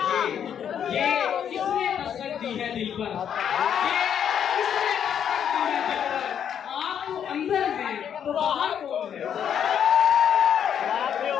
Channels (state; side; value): quieter; right; 8.7 dB